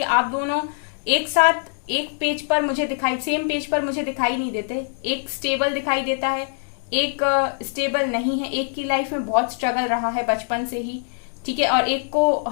आप दोनों एक साथ एक पेज पर मुझे सेम पेज पर मुझे दिखाई नहीं देते। एक स्टेबल दिखाई देता है, एक स्टेबल नहीं है। एक की लाइफ में बहुत स्ट्रगल रहा है बचपन से ही, ठीक है। और एक को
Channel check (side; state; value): right; silent; 63 dB below the other